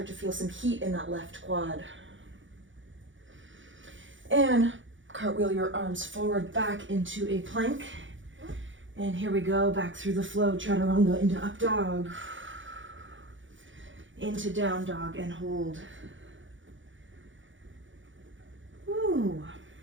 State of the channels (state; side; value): late; left; 0.56 ms